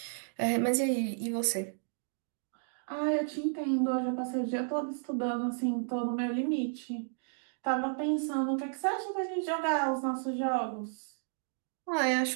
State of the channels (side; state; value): left; silent; digital silence